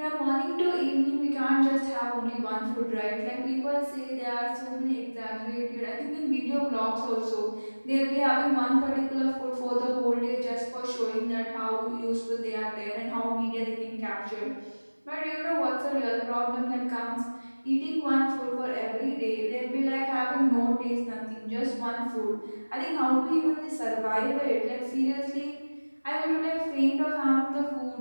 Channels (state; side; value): inverted; both; correlation -1.00